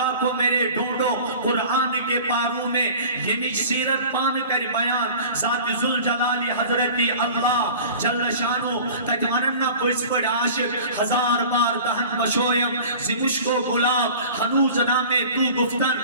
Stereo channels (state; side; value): inverted; both; correlation -0.41